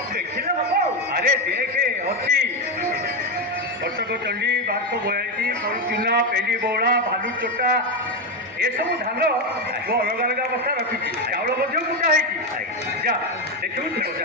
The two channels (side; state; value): both; normal; correlation 0.10